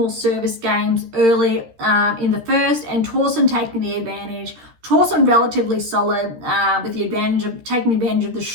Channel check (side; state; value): left; late; 13 ms